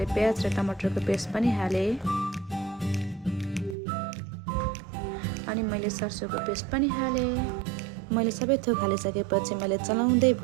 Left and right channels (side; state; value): left; drops out; at 3.8 s